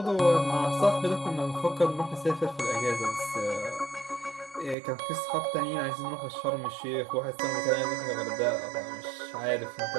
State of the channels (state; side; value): drops out; left; at 4.8 s